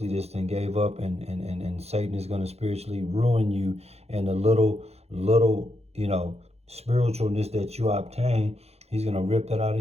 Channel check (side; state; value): left; late; 0.30 ms